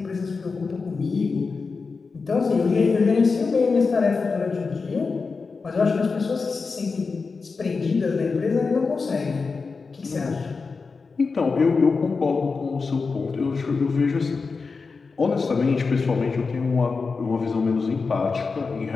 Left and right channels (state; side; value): quieter; right; 4.6 dB